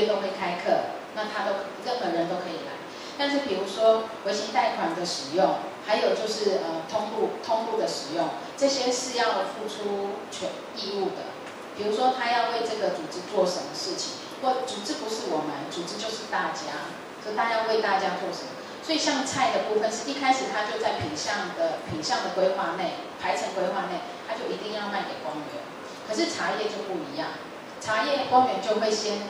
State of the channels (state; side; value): identical; both; correlation 1.00